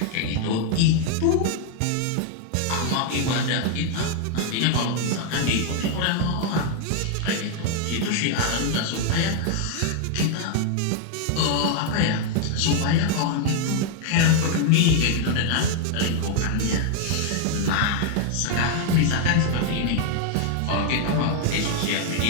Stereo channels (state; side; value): different; both; correlation 0.00